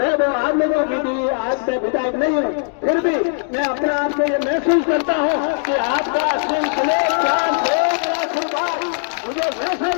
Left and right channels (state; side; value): silent; right; digital silence